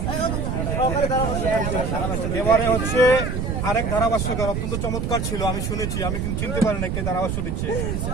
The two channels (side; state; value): right; noise; rumble, 1 dB below the sound